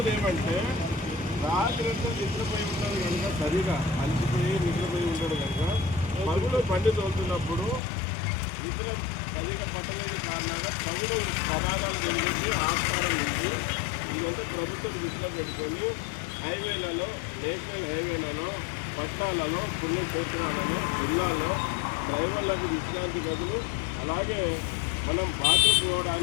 ఏమంటే రాత్రి అంతా నిద్రపోయి ఉంటాడు కనుక, సరిగా అలసిపోయి నిద్రపోయి ఉంటాడు కనుక పగులు బండి తోలుతున్నప్పుడు నిద్ర సరిగా పట్టలేని కారణంగా పగులు ప్రమాదాలు జరిగింది, ఆస్కారం ఉంది. ఇదంతా ప్రభుత్వం దృష్టిలో పెట్టుకొని హైవేలలో, నేషనల్ హైవేలలో, పట్టాలలో, పుణ్యక్షేత్రాలలో, జిల్లాల్లో డ్రైవర్లకు విశ్రాంతి గదులు, అలాగే మనం బాత్రూమ్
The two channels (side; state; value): right; drops out; at 7.8 s